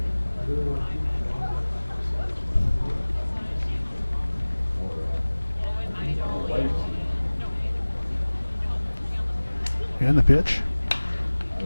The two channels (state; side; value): inverted; both; correlation -1.00